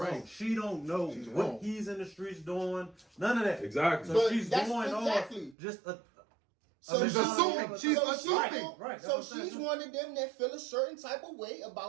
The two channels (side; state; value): left; drops out; at 5.6 s